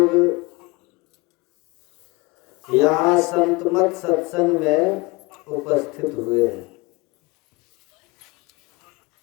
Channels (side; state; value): right; quieter; 24.2 dB